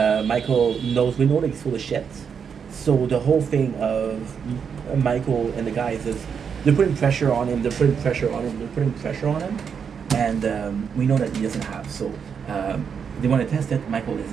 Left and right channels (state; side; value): quieter; left; 6.8 dB